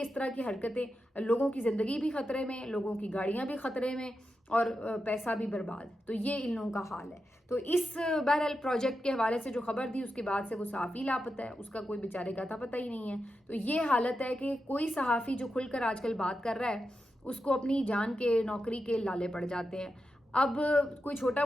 اس طرح کی حرکتیں، لوگوں کی زندگی بھی خطرے میں، لوگوں کی گاڑیاں بھی خطرے میں، اور پیسہ بھی برباد. تو یہ ان لوگوں کا حال ہے. تو اس بہرحال پروجیکٹ کے حوالے سے جو خبر تھی اس کے بعد سے وہ صحافی لاپتہ ہے، اس کا کوئی بیچارے کا تھا پتہ ہی نہیں ہے. تو یہ حالت ہے کہ کوئی صحافی جو کھل کر آج کل بات کر رہا ہے اس کو اپنی جان کے نوکری کے لالے پڑ جاتے ہیں. اب کوئی چھوٹا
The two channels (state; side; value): normal; both; correlation 0.89